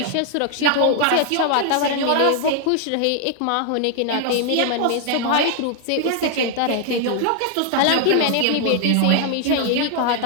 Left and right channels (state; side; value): different; both; correlation 0.00